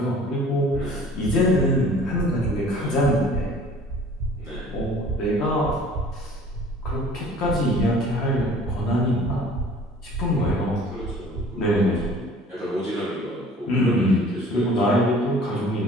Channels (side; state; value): both; normal; correlation 0.49